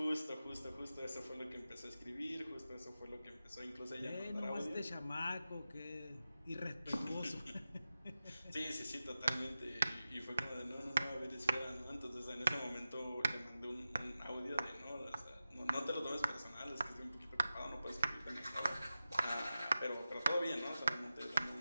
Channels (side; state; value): both; inverted; correlation -0.93